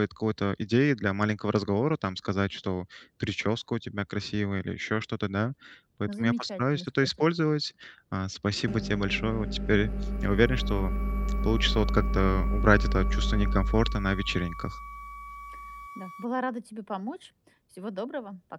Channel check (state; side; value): identical; both; correlation 1.00